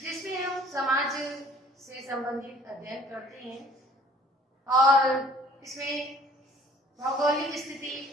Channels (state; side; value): normal; both; correlation 0.53